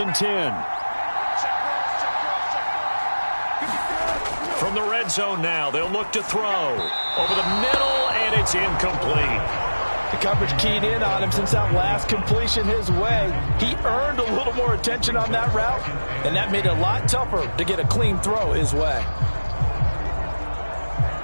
and 10. From the red zone now, they'll look to throw. Over the middle, and it's incomplete. The coverage keyed in on him since that last completion his way. He earned a little more attention on that route, and that made it a lot tougher to get a clean throw his way.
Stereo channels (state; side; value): inverted; both; correlation -1.00